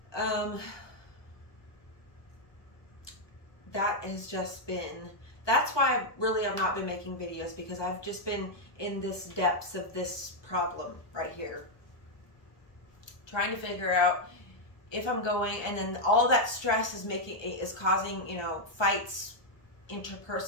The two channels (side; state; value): right; late; 1.2 ms